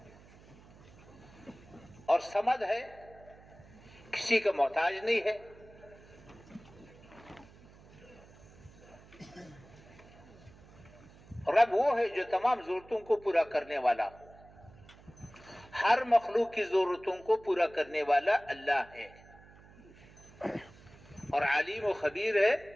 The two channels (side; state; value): right; noise; hum, 23 dB below the sound